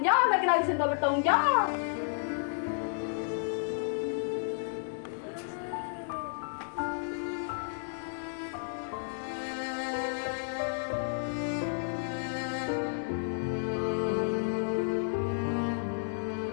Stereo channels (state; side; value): silent; right; digital silence